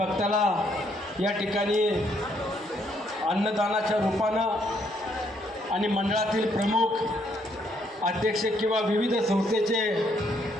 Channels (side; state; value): both; normal; correlation 0.71